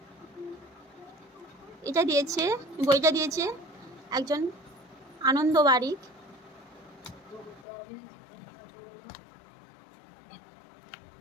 এটা দিয়েছে, বইটা দিয়েছে একজন আনন্দ বারিক।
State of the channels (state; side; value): drops out; right; at 7.7 s